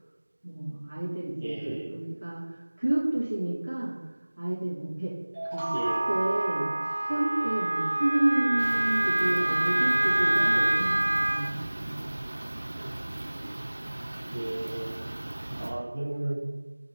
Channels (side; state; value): both; inverted; correlation -1.00